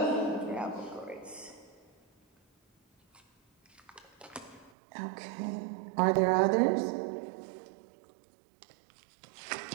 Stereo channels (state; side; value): drops out; left; at 4.7 s